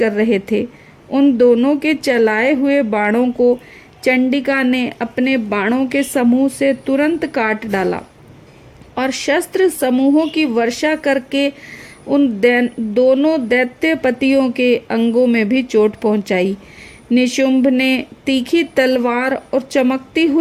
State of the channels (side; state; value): both; identical; correlation 1.00